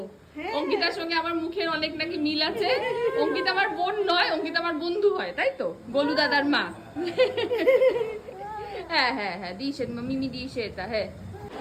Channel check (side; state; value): both; identical; correlation 1.00